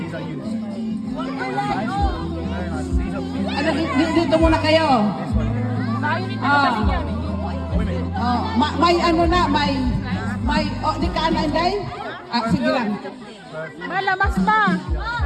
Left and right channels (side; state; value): both; identical; correlation 1.00